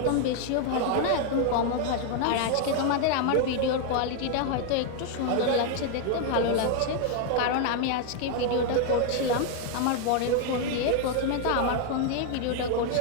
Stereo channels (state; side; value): different; both; correlation 0.00